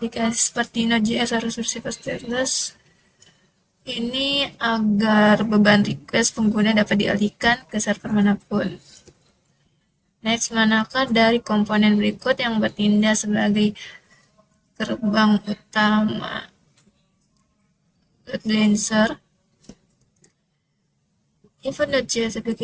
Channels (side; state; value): both; identical; correlation 1.00